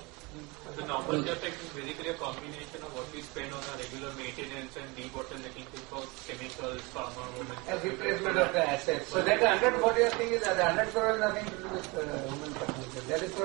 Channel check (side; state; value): left; quieter; 26.2 dB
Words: The normal capex is basically a combination of what we spend on our regular maintenance and debottlenecking for chemicals, pharma, A replacement of the assets. So that 140 thing is that the 100 crore has nothing to do with human capital.